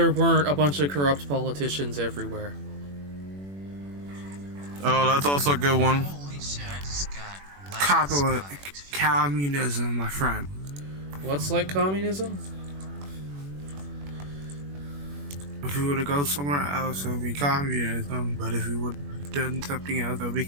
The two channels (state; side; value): late; left; 21 ms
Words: weren't a bunch of corrupt politicians everywhere. Oh, that's also a good one. Holy shit, I just got Copper communism, my friend. What's like communism? If we were to go somewhere else, it would be communism. But if we would have done something else, it would be